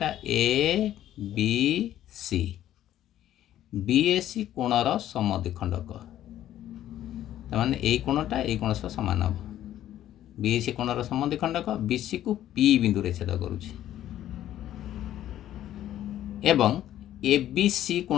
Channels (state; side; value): quieter; right; 12.4 dB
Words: ए बी सी बी ए सी कोणर समद्विखंडक ताने ए कोणटा ए कोण सह समान हम। बी ए सी कोणर समद्विखंडक बीसी को पी बिंदु रे छेद करुछि एवं ए बी सी